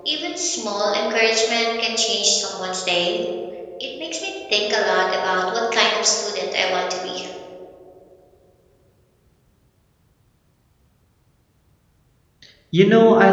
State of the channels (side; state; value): both; identical; correlation 1.00